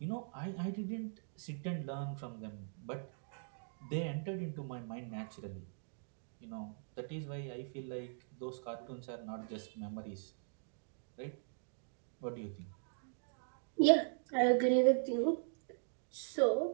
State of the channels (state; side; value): silent; left; digital silence